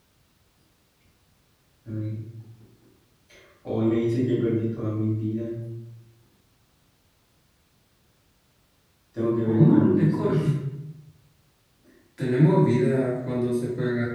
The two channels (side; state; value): both; identical; correlation 1.00